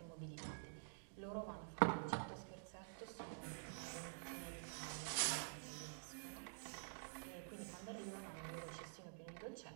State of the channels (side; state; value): left; silent; digital silence